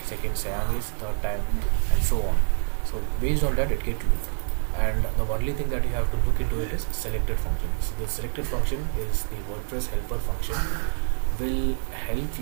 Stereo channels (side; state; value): left; silent; digital silence